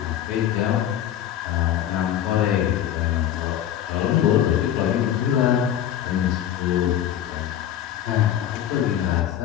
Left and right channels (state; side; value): quieter; right; 10.8 dB